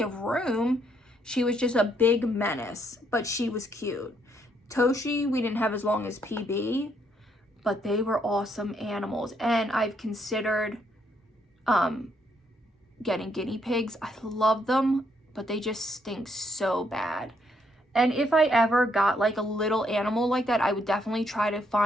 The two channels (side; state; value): both; normal; correlation 0.73